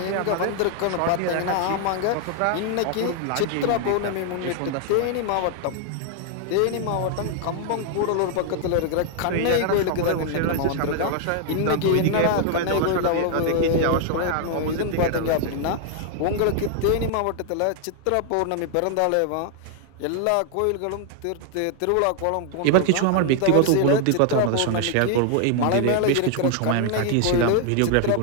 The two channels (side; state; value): both; different; correlation 0.00